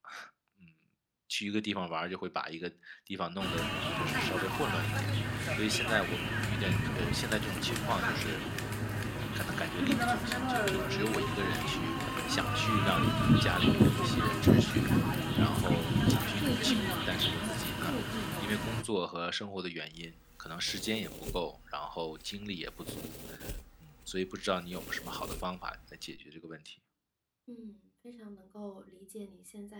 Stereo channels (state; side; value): identical; both; correlation 1.00